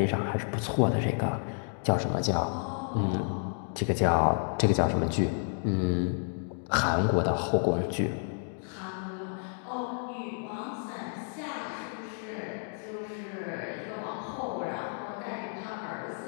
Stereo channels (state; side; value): silent; right; 57 dB below the other